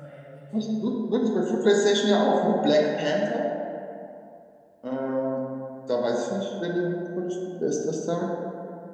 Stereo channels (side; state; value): both; identical; correlation 1.00